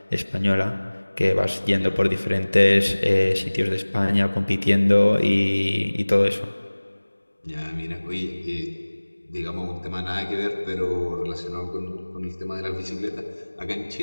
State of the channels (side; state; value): both; inverted; correlation -1.00